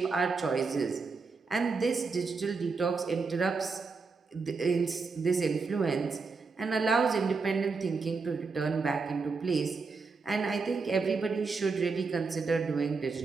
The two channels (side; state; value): left; quieter; 4.5 dB